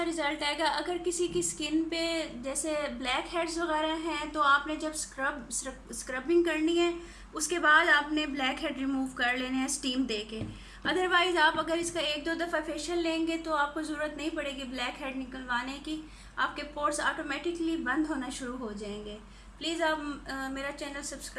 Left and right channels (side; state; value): both; identical; correlation 1.00